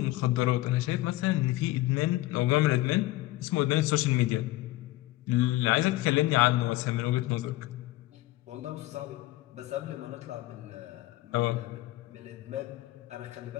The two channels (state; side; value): quieter; right; 17.6 dB